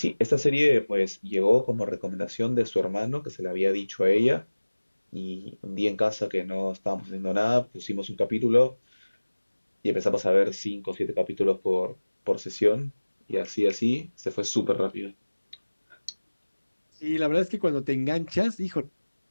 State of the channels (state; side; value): inverted; both; correlation -1.00